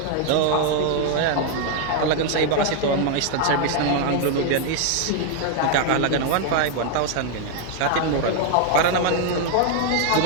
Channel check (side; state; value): both; different; correlation 0.00